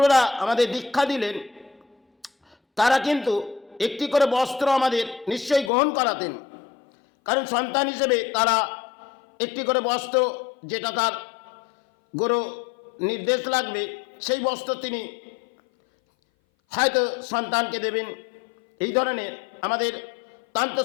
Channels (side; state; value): right; drops out; at 5.7 s